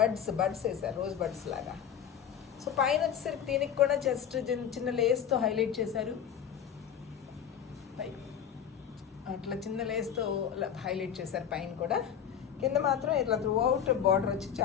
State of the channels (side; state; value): right; quieter; 8.6 dB